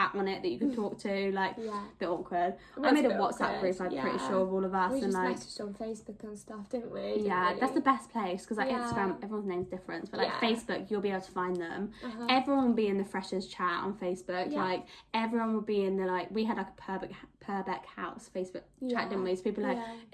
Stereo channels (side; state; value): both; identical; correlation 1.00